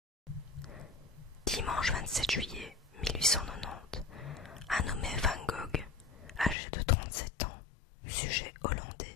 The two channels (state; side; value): drops out; right; at 6.6 s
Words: Dimanche 27 juillet 1890, un nommé Van Gogh, âgé de 37 ans, sujet